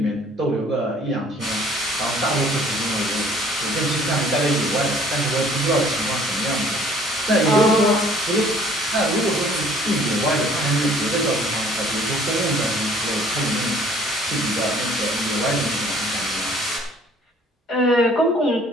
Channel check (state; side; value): normal; both; correlation 0.56